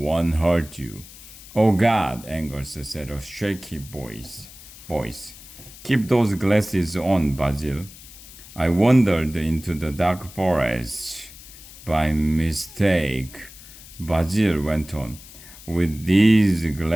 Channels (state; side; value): noise; left; hiss, 18 dB below the sound